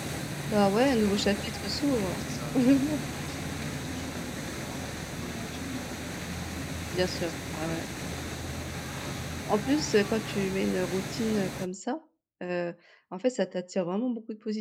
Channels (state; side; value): identical; both; correlation 1.00